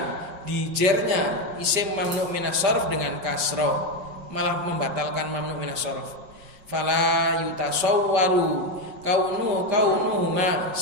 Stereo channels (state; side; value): late; left; 5.5 ms